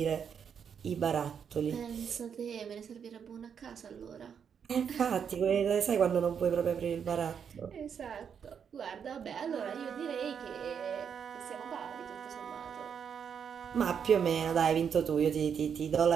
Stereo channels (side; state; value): left; quieter; 7.4 dB